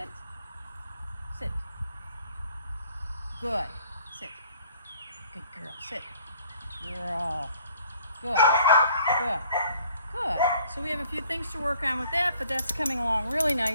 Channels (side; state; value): both; inverted; correlation -0.58